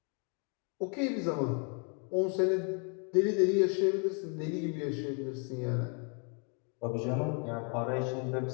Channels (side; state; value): right; quieter; 38.1 dB